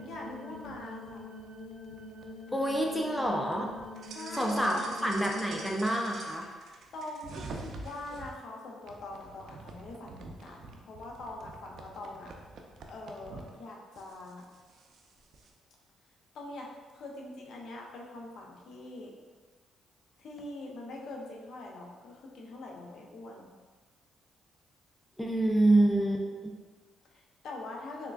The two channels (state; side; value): normal; both; correlation 0.88